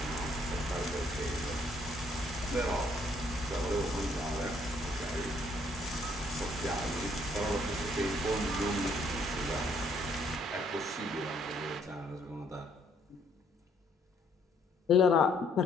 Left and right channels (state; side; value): normal; both; correlation 0.67